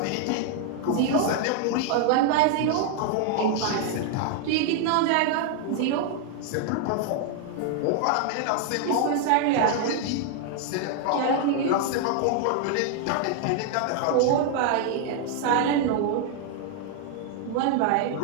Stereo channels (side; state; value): both; different; correlation 0.00